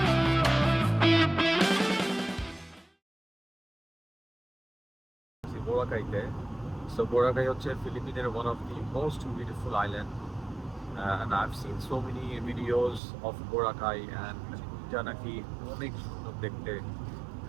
বোরাকাইতে। সো বোরাকাই হচ্ছে ফিলিপিনের one of the most beautiful island, and I've seen so many videos of Boracay, and এটা নাকি অনেক সুন্দর দেখতে,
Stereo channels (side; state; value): left; drops out; at 13.0 s